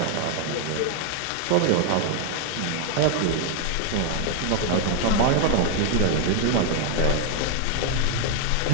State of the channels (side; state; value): both; different; correlation 0.00